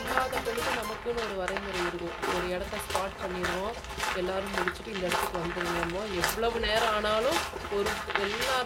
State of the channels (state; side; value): identical; both; correlation 1.00